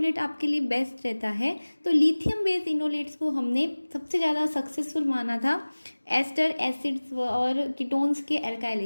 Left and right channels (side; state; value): both; inverted; correlation -1.00